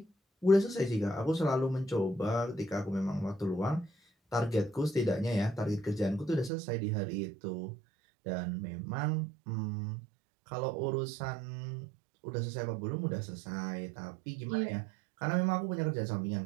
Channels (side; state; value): left; drops out; at 6.5 s